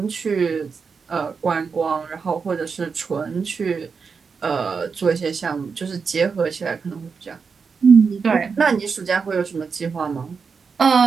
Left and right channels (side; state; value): left; quieter; 5.4 dB